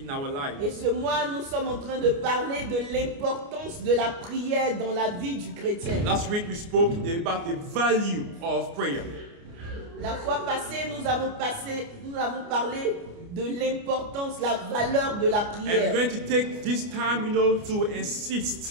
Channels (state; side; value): late; left; 29 ms